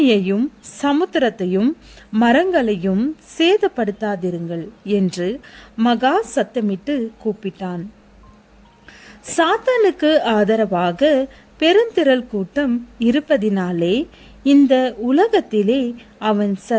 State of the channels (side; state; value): both; identical; correlation 1.00